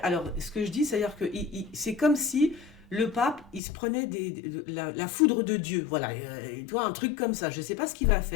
ce que je dis, c'est-à-dire que c'est comme si le pape, il se prenait la foudre de Dieu. Voilà, tu vois, un truc comme ça. Je ne sais pas ce qu'il va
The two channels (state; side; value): drops out; right; at 3.6 s